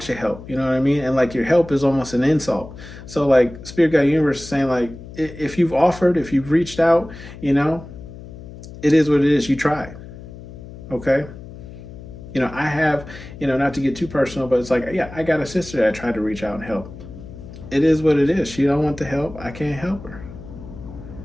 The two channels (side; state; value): left; noise; hum, 15 dB below the sound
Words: your help. You know what I mean? And like your help is almost an insult. So like Spirit, God, Universe is saying like if you've offered, if you've reached out, it is what it is. You tried. Okay. I have, not to get too personal, but it's like, yeah, I got a sister that I tried to reach out and help. It is what it is. She don't want the help. I can't help her.